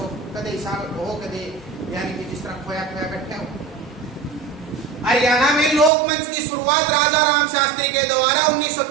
कदे हिसाब हो कदे यानी कि जिस तरह खोया खोया बैठे हो। हरियाणा में लोकमंच की शुरुआत राजा राम शास्त्री के द्वारा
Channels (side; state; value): left; drops out; at 5.9 s